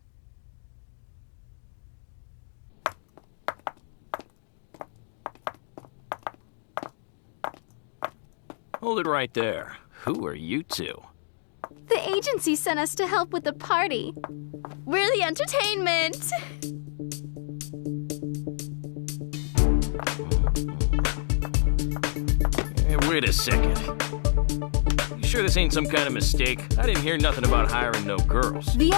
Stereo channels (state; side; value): silent; right; digital silence